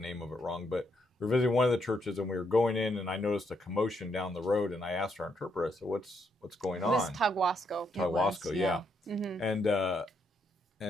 of it wrong, but we were visiting one of the churches and we were going in and I noticed a commotion down the road and I asked our interpreter, I said, what's going It was on? Taguasco. Taguasco, yeah.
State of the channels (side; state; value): both; normal; correlation 0.76